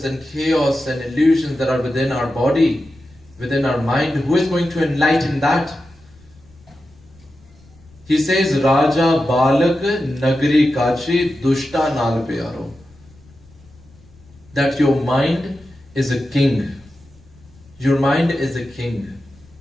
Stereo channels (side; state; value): left; noise; rumble, 27 dB below the sound